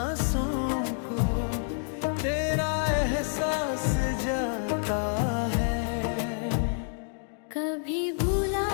को तेरा एहसास जाता है। कभी भूला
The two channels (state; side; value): silent; right; digital silence